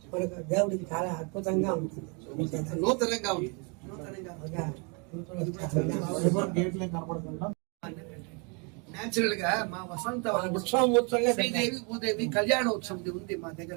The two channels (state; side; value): quieter; left; 33.8 dB